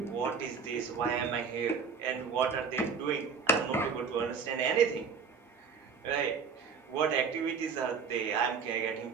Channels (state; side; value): quieter; left; 5.8 dB